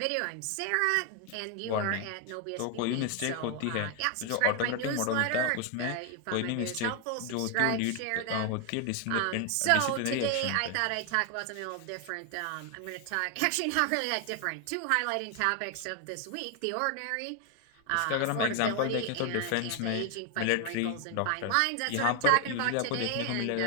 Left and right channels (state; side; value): different; both; correlation 0.01